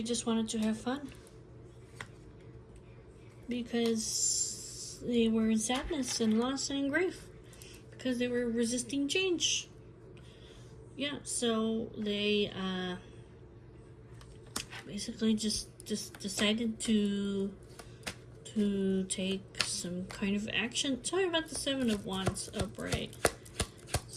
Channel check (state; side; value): identical; both; correlation 1.00